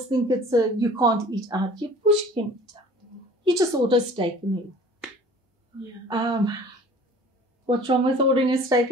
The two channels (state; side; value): normal; both; correlation 0.48